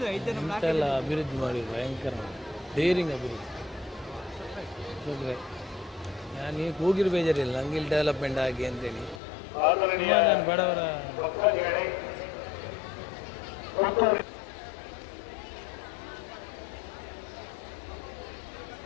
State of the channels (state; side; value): drops out; right; at 9.2 s